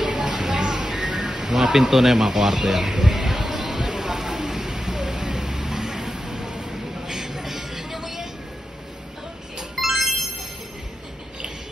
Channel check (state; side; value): normal; both; correlation 0.90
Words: Mga pinto na yung mga kwarto yan.